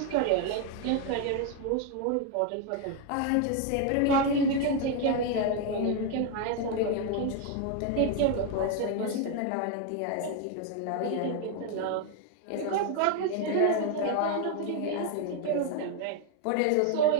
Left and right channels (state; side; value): different; both; correlation 0.01